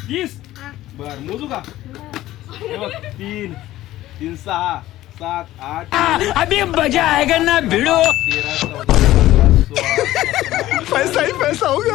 30. बर, मोजू का? हे बघ, 3 3 6 7 8 अभी मजा आएगा ना भिड़ो. 13 14 16 पैसा ही पैसा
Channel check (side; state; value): right; quieter; 15.2 dB